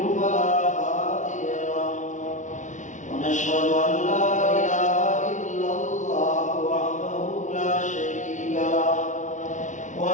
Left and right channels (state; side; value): late; right; 0.36 ms